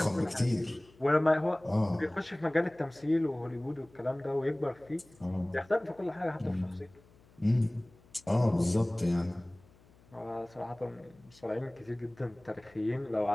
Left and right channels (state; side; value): noise; left; hum, 27 dB below the sound